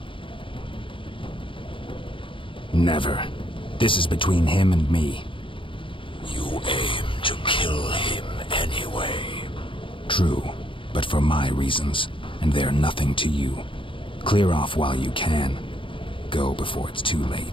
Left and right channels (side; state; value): right; late; 0.25 ms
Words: Never. This is between him and me. You aim to kill him anyway. True, but for my reasons, and they're nothing to you. Clear off while you can. Go before it's too